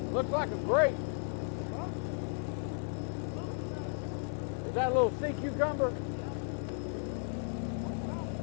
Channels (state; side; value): silent; right; 55 dB below the other